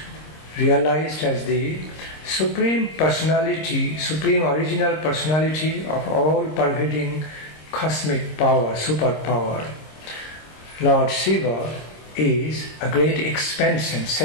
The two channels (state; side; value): late; right; 26 ms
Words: realized as the supreme personality, supreme original personality of all pervading cosmic power, superpower. Lord Siva is a great expansion,